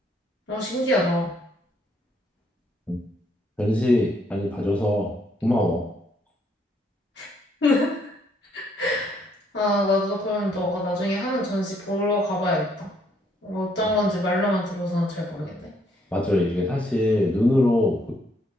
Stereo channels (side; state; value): both; normal; correlation 0.69